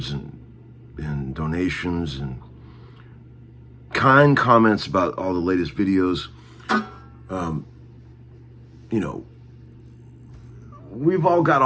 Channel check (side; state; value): both; identical; correlation 1.00